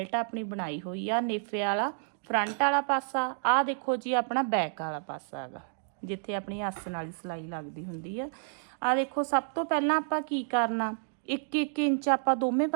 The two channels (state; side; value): silent; left; digital silence